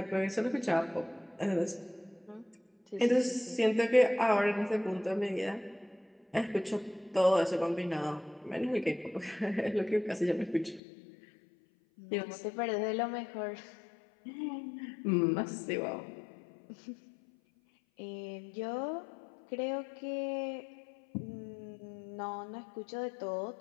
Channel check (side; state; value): right; drops out; at 10.8 s